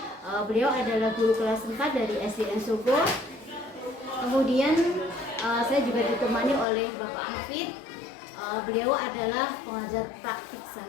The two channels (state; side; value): drops out; right; at 6.7 s